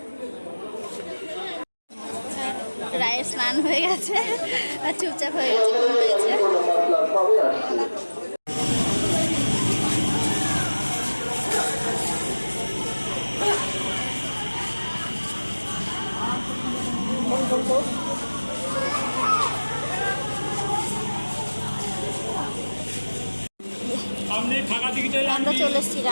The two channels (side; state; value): both; inverted; correlation -1.00